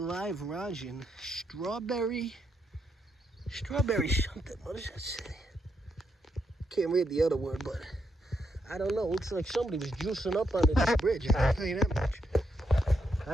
live rosin, strawberry something. What does that say? Can't read the other word, but I don't know. Looks like somebody was juicing up under this bridge. I can tell you that much.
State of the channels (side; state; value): both; normal; correlation 0.80